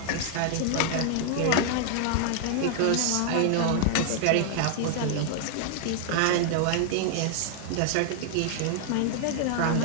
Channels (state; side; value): different; both; correlation 0.00